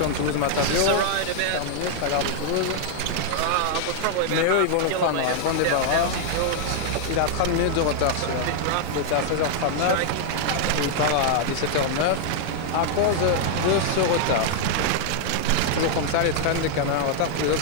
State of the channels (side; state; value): both; different; correlation 0.00